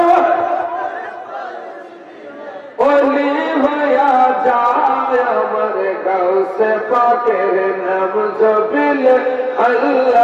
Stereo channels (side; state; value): both; identical; correlation 1.00